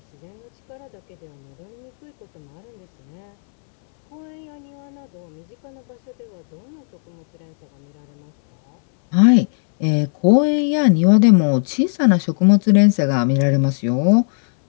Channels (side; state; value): right; silent; 66 dB below the other